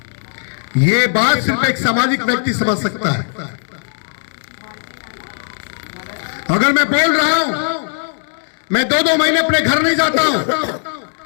ये बात सिर्फ एक सामाजिक व्यक्ति समझ सकता है। अगर मैं बोल रहा हूं मैं 2-2 महीने अपने घर नहीं जाता हूं,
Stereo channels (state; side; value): silent; right; 68 dB below the other